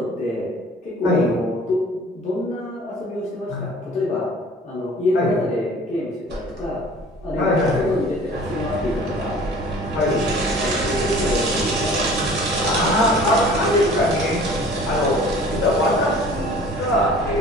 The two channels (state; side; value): normal; both; correlation 0.48